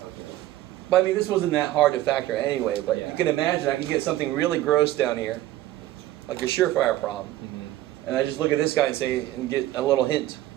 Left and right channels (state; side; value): quieter; left; 14.8 dB